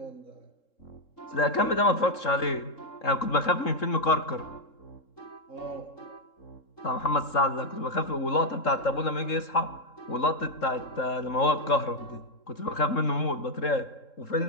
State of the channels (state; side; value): late; right; 3.7 ms